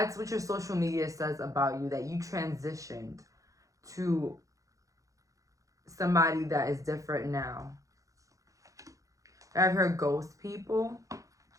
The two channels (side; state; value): left; late; 0.16 ms